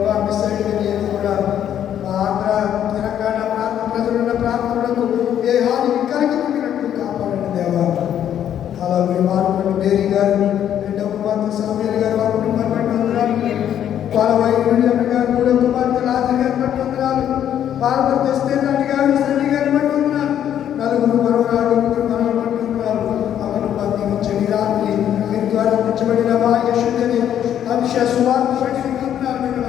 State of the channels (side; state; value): right; quieter; 10.1 dB